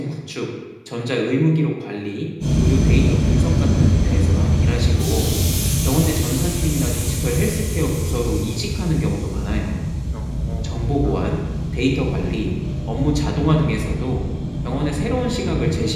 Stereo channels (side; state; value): both; identical; correlation 1.00